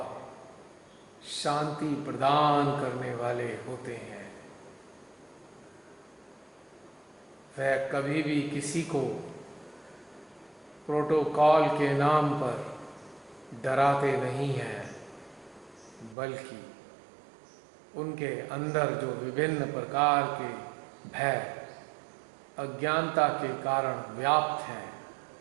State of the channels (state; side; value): drops out; left; at 16.2 s